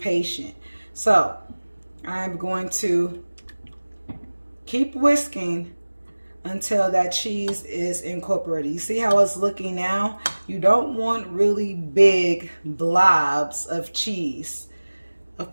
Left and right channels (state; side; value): inverted; both; correlation -1.00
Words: So I'm going to keep whisking until that cheese is incorporated. You see how it's looking now? You don't want really big blobs of cheese, of